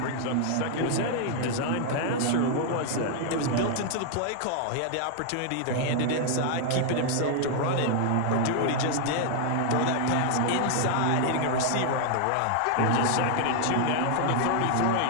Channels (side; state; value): both; different; correlation 0.00